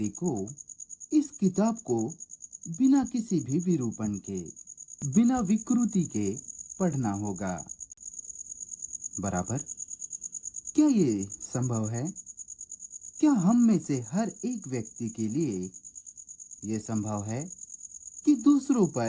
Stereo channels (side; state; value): both; identical; correlation 1.00